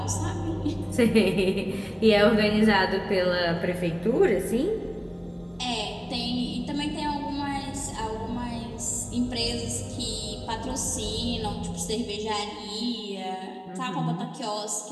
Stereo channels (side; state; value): both; identical; correlation 1.00